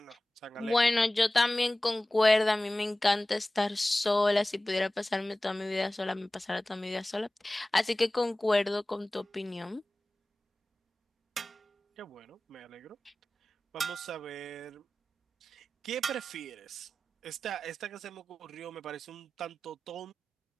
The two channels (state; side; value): normal; both; correlation 0.97